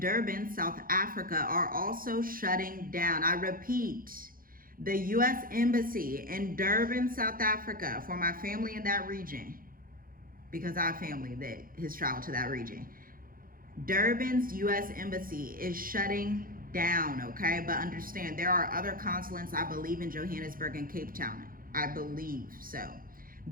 Durban, South Africa are also shutting down. I repeat, the U.S. Embassy in Durban, South Africa, for my family in that region, because I have family that has traveled to that region. Durban's U.S. Embassy is shutting down, okay? But understand, there are other consulates, I believe, in Johannesburg and Cape Town. I believe so.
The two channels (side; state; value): left; late; 0.41 ms